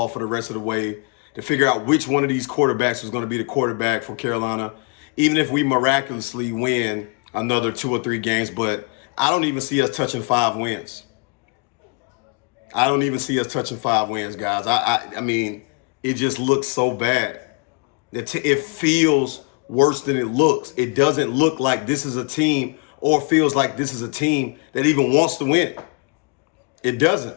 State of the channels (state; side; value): quieter; right; 32.1 dB